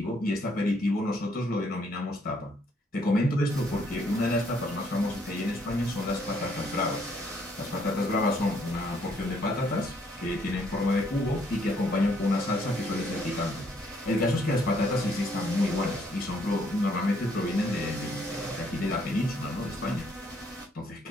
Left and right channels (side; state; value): both; normal; correlation 0.68